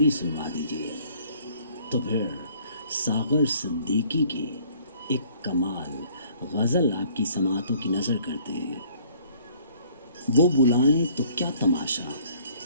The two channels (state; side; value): inverted; both; correlation -0.58